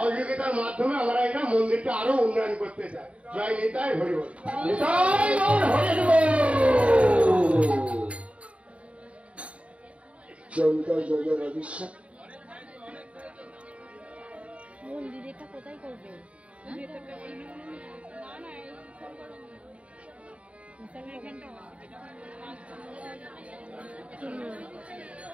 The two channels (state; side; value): late; left; 0.063 ms